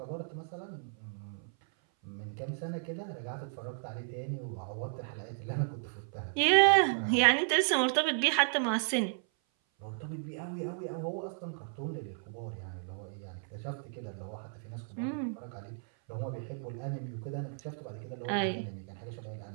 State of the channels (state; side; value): silent; left; 55 dB below the other